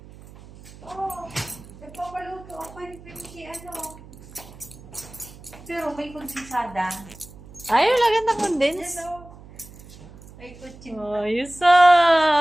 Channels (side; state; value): right; noise; hum, 19 dB below the sound